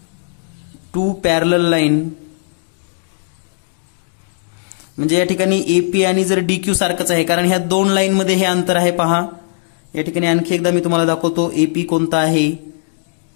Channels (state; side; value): silent; right; digital silence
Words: two parallel line, म्हणजे या ठिकाणी एपी आणि जर डीक्यू सारखंच आहे, कारण ह्या दोन लाईन मध्ये हे अंतर आहे. पहा या ठिकाणी आणखी एकदा मी तुम्हाला दाखवतो एपी कोणता आहे,